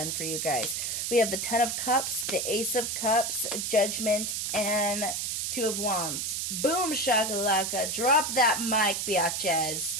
for you guys. We have the Ten of Cups, the Ace of Cups, Judgment, and Two of Wands. Boom, shakalaka. Drop that mic, biatches.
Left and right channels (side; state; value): right; noise; hiss, 1 dB below the sound